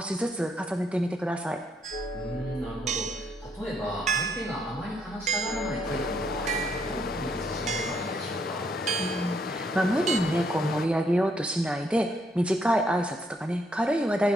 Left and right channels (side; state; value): both; normal; correlation 0.73